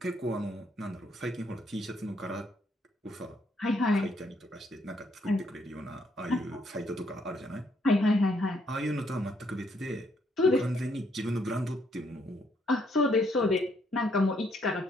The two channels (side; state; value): both; normal; correlation 0.71